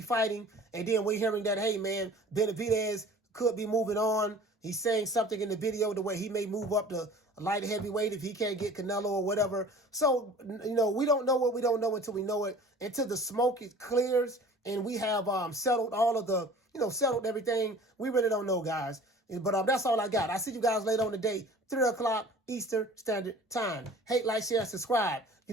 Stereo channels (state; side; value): normal; both; correlation 0.46